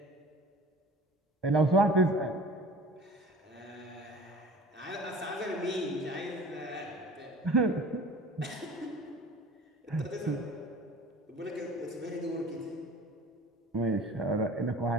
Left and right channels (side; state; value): both; normal; correlation 0.44